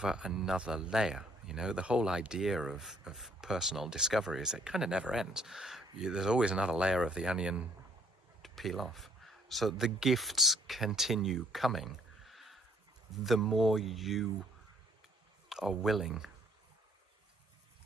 another layer. You know, the whole idea of personal discovery is it kind of never ends. There's always another layer of the onion to peel off. So the gifts continue coming the more you are willing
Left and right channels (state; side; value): normal; both; correlation 0.64